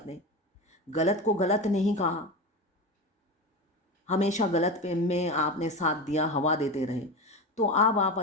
गलत को गलत नहीं कहा, हमेशा गलत पे में आपने साथ दिया, हवा देते रहे, तो अब आप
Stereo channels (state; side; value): normal; both; correlation 0.22